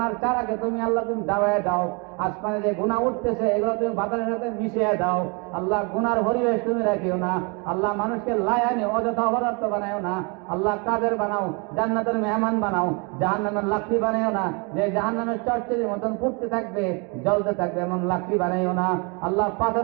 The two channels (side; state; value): left; quieter; 32.1 dB